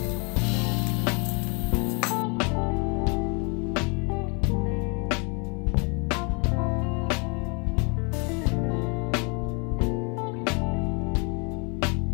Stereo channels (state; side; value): quieter; right; 32.6 dB